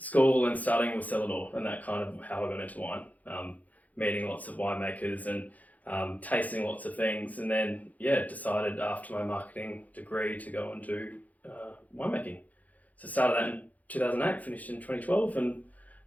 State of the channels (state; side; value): late; right; 0.077 ms